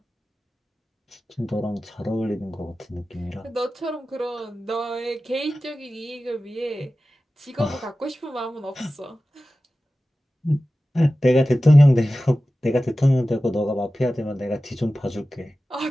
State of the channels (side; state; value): both; normal; correlation 0.95